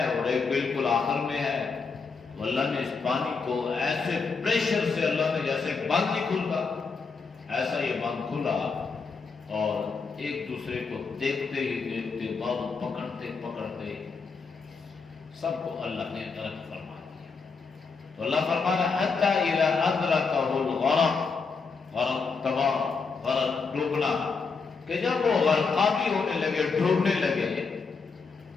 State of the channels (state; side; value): quieter; right; 4.9 dB